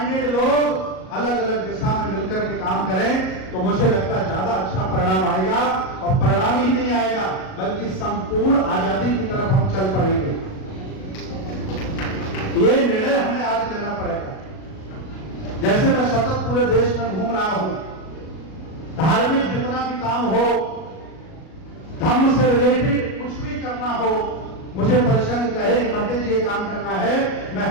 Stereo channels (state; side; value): late; right; 37 ms